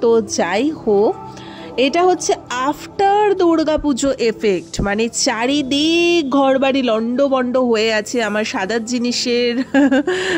তো যাই হোক, এটা হচ্ছে আফটার দুর্গাপুজো এফেক্ট, মানে চারিদিক ঘরবাড়ি লন্ডভন্ড হয়ে আছে। আমার সাদার জিনিসের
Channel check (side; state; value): both; identical; correlation 1.00